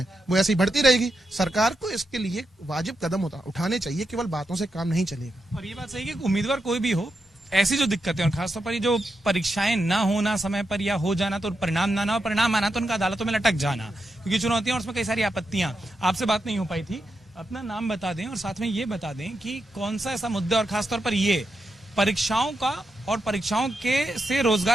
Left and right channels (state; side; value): normal; both; correlation 0.86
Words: वो ऐसी बढ़ती रहेगी। सरकार को इसके लिए वाजिब कदम उठाने चाहिए, केवल बातों से काम नहीं चलेगा। और ये बात सही है कि उम्मीदवार कोई भी हो, ऐसी जो दिक्कतें, और खासतौर पर ये जो परीक्षाएं ना होना समय पर, या हो जाना तो परिणाम ना हो, परिणाम आना तो उनका अदालतों में लटक जाना, क्योंकि चुनौतियां और उसमें कई सारी आपत्तियां। आपसे बात नहीं हो पाई थी, अपना नाम बता दें और साथ में ये बता दें कि कौन सा ऐसा मुद्दा, और खासतौर पर ये परीक्षाओं का और परीक्षाओं के से